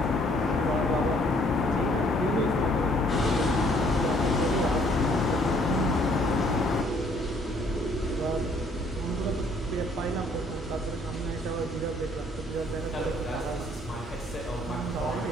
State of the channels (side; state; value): both; normal; correlation 0.62